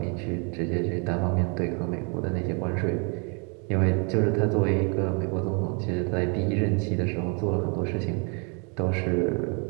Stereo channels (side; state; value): left; quieter; 35.7 dB